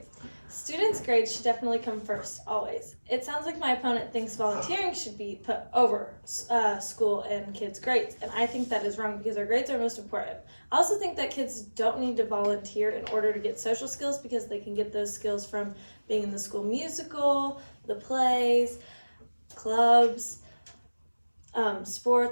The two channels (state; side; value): inverted; both; correlation -1.00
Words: students' grades should definitely come first, always. It sounds like my opponent thinks volunteering should be put over school and kids' grades, and I think that is wrong because our grades are most important. I also think that kids don't need to volunteer in order to get social skills because they can get those skills from being in the school musical, the plays, clubs,